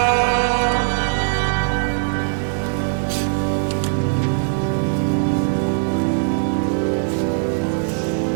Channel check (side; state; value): left; silent; 66 dB below the other